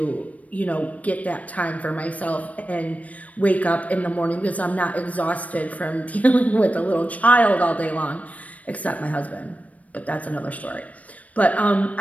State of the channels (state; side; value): late; right; 0.069 ms